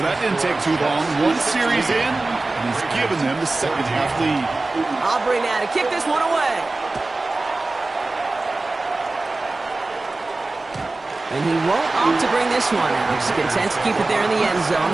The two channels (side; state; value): left; quieter; 3.2 dB